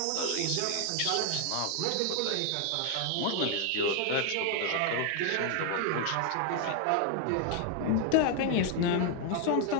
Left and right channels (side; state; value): both; different; correlation 0.00